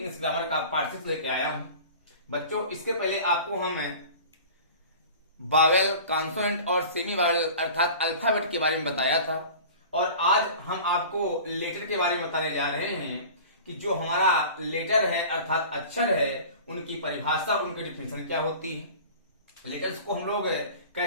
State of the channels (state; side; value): inverted; both; correlation -0.40